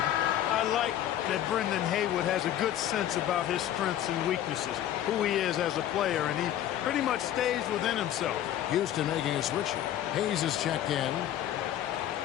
I like that Brendan Haywood has a good sense about his strengths and weaknesses, who he is as a player, and he pretty much stays within himself. Houston making a switch here. Hayes is checked in.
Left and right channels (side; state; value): right; quieter; 11.8 dB